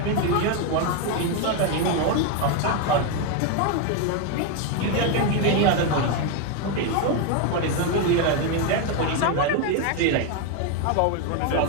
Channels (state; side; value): different; both; correlation 0.01